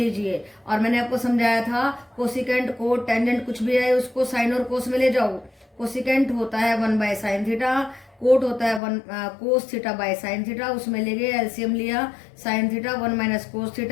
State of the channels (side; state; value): right; drops out; at 8.8 s